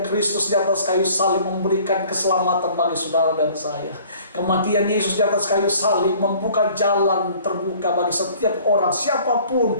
Kristus di atas kayu salib memberikan keselamatan bagi saudara dan saya. Kematian Yesus di atas kayu salib membuka jalan terbuka bagi setiap orang, siapapun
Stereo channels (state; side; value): inverted; both; correlation -0.52